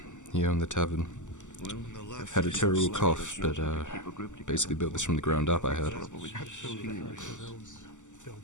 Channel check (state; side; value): late; right; 0.85 ms